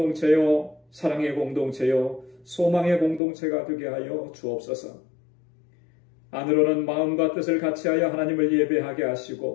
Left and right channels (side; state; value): right; drops out; at 3.2 s